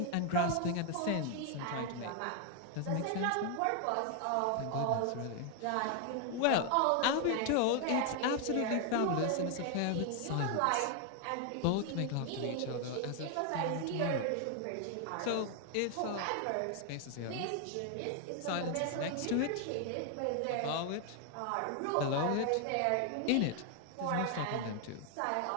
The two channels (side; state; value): both; different; correlation 0.00